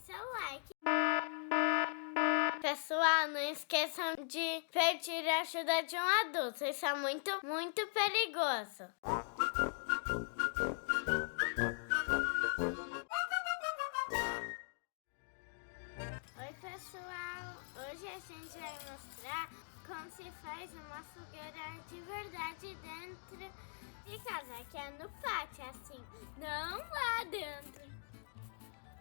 like. Pessoal, não esqueçam de pedir ajuda de um adulto. Isso é muito, muito perigoso. Oi, pessoal! Hoje a gente vai mostrar como se faz uma fogueira de verdade dentro de casa, que é no pátio, assim, não lá dentro.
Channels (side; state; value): right; silent; digital silence